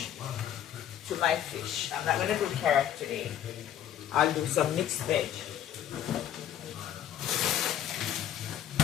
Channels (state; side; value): quieter; right; 10.6 dB